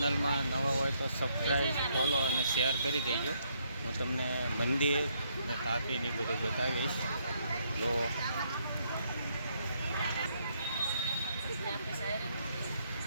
નવા હોય તો સબસ્ક્રાઈબ, ફોલો અને શેર કરી દેજો. હું તમને મંદિર અને તાપીની બધું બતાવીશ. જો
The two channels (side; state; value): both; inverted; correlation -0.73